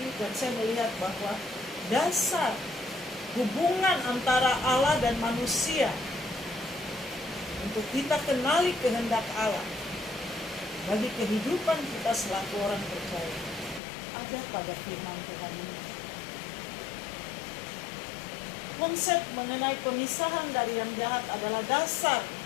dan saya melihat bahwa dasar hubungan antara Allah dan manusia untuk kita kenali kehendak Allah bagi kehidupan kita selaku orang percaya ada pada firman Tuhan ini. Konsep mengenai pemisahan dari yang jahat adalah dasar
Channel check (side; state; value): right; drops out; at 13.8 s